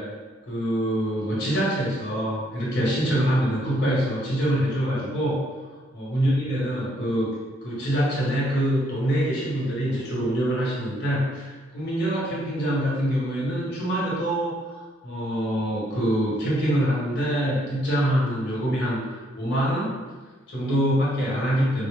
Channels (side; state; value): both; normal; correlation 0.70